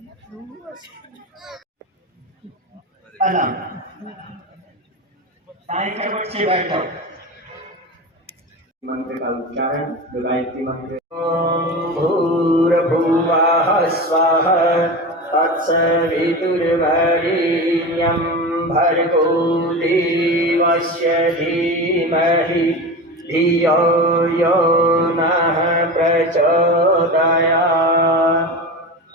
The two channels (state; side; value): normal; both; correlation 0.26